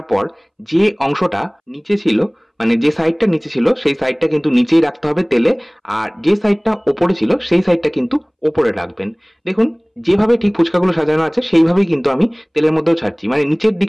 পর যে অংশটা নিচে ছিল, মানে যে সাইডটা নিচে ছিল সেই সাইডটা কিন্তু নিচেই রাখতে হবে তেলে, আর যে সাইডটা ওপরে ছিল সেই সাইডটা কিন্তু ওপরে রাখবেন। দেখুন যেভাবে ঠিক ফুচকাগুলো সাজানো আছে সেইভাবেই কিন্তু আমি তেলের মধ্যেও ছাড়ছি, মানে নিচের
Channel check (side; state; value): both; identical; correlation 1.00